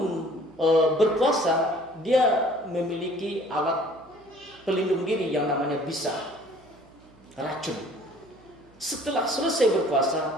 berpuasa, dia memiliki alat pelindung diri yang namanya bisa, racun. Setelah selesai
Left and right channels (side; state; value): right; noise; hum, 28 dB below the sound